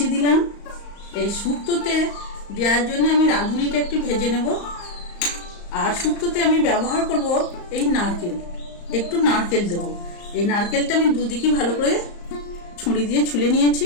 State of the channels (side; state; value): right; late; 35 ms